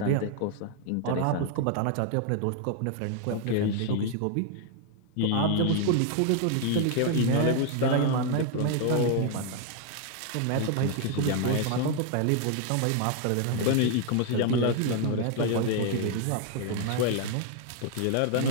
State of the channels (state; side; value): different; both; correlation 0.00